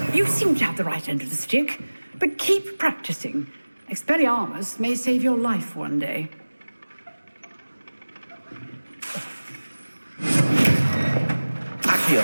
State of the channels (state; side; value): inverted; both; correlation -1.00